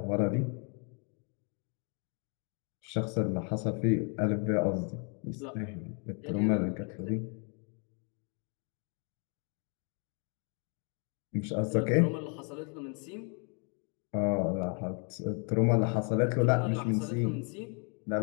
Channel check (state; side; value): quieter; right; 37.6 dB